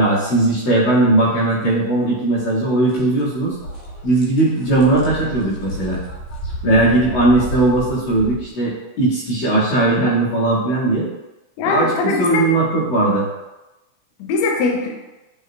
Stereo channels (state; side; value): late; right; 16 ms